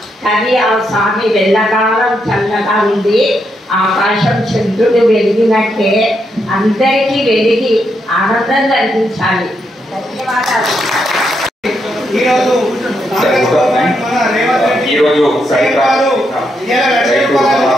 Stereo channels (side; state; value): both; normal; correlation 0.80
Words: కానీ ఆ స్వామి వెళ్ళకాలం చల్లగా ఉంది. ఆకాశం చంద్రుడు వెలిగినట్టే అందరికీ వెలిగి ఆనందం కలిగించాలి. ధన్యవాదాలు. ఈరోజు